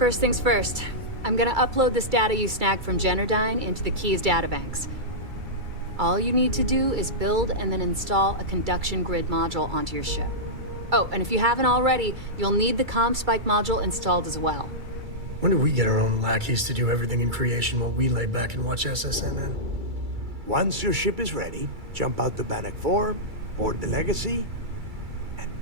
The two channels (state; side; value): late; left; 2.3 ms